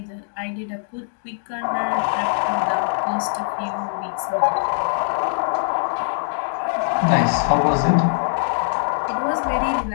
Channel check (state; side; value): silent; right; digital silence